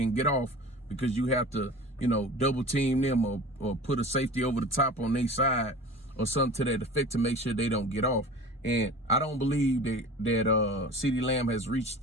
get off because you have to, double team them or put a safety over the top on their side or something to that effect to make sure they don't get off. And I don't believe that CeeDee Lamb has reached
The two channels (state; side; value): normal; both; correlation 0.38